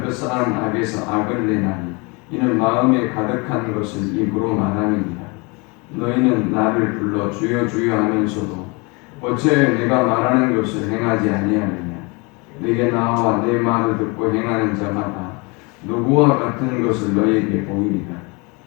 그 쌓은 악에서 악을 내나니 이는 마음에 가득한 것을 입으로 말함이니라. 너희는 나를 불러 주여 주여 하면서도 어찌하여 내가 말하는 것을 행하지 아니하느냐? 내게 나와 내 말을 듣고 행하는 자마다 누구와 같은 것을 너희에게 보이리라.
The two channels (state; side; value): quieter; right; 28.8 dB